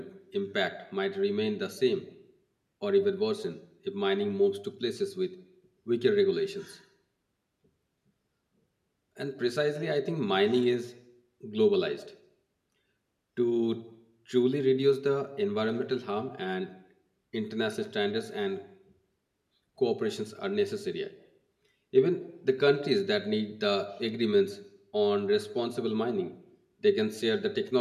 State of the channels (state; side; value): identical; both; correlation 1.00